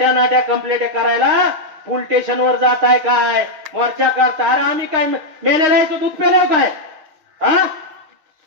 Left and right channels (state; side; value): late; left; 6.5 ms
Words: नाट्या कंप्लेंट करायला पोलीस स्टेशनवर जाताय काय, मोर्चा करता. अरे आम्ही काय मेलेलं याचं दूध पेलो काय? हा,